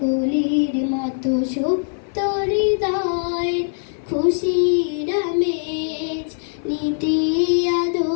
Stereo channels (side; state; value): right; silent; 58 dB below the other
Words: কলির মতো সুপ্ত হৃদয়ের খুশির আমেজ, নীতি